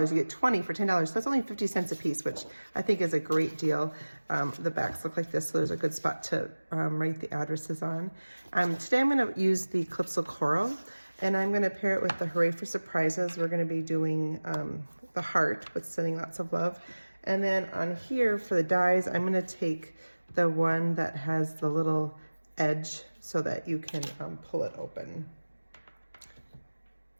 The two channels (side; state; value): both; inverted; correlation -1.00